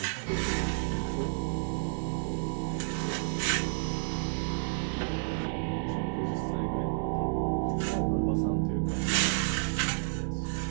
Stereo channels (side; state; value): left; silent; digital silence